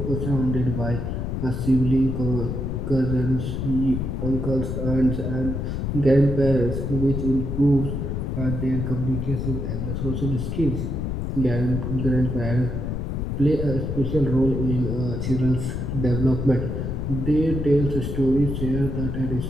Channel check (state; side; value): noise; left; rumble, 2 dB below the sound